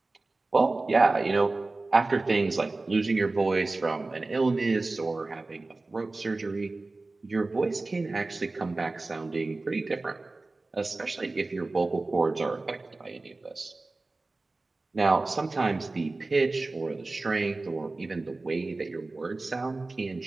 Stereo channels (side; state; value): left; quieter; 3.3 dB